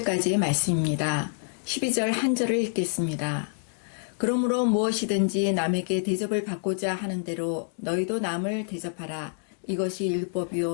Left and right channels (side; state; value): right; silent; 56 dB below the other